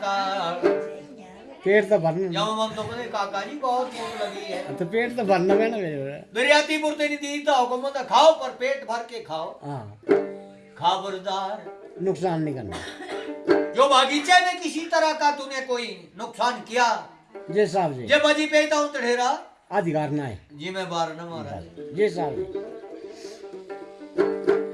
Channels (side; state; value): both; identical; correlation 1.00